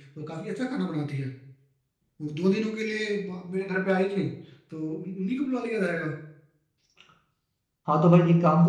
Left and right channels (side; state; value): both; identical; correlation 1.00